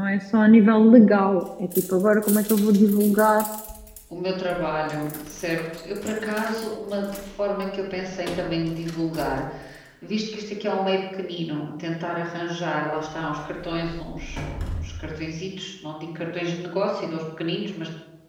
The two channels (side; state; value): both; identical; correlation 1.00